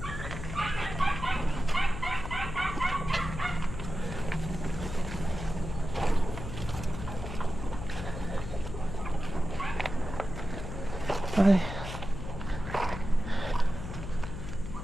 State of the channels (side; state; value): left; noise; hum, 7 dB below the sound